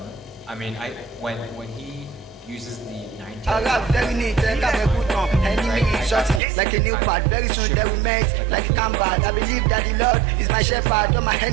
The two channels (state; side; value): drops out; left; at 6.4 s